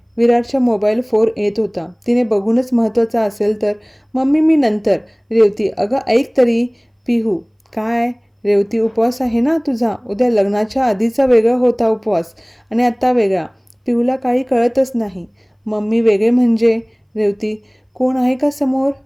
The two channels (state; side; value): identical; both; correlation 1.00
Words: विराटच्या मोबाईल 4 येत होता. तिने बघूनच महत्त्वाचा असेल तर. मम्मी मी नंतर. रेवती, अगं ऐक तरी. पिहू, काय? रेवती, उपवास आहे ना तुझा. उद्या लग्नाच्या आधीचा वेगळा होता उपवास आणि आत्ता वेगळा. पिहूला काही कळतच नाही. मम्मी वेगळे म्हणजे? रेवती, कोण आहे का समोर?